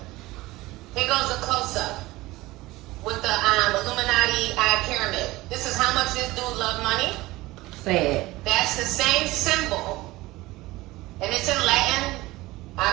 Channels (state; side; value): quieter; left; 19.3 dB